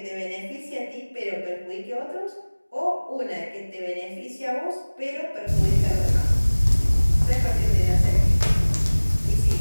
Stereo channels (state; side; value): inverted; both; correlation -1.00